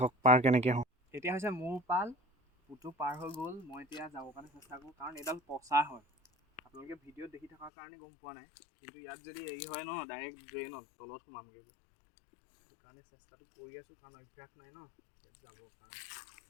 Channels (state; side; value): drops out; right; at 7.7 s